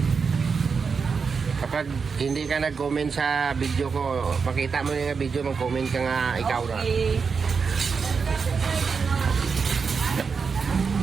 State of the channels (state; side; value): quieter; left; 5.5 dB